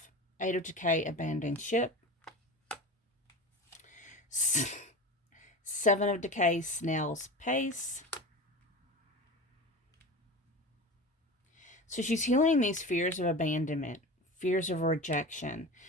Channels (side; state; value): both; normal; correlation 0.29